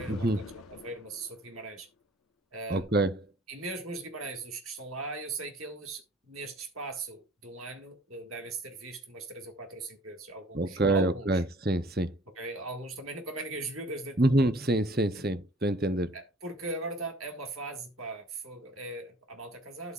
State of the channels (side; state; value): both; normal; correlation 0.52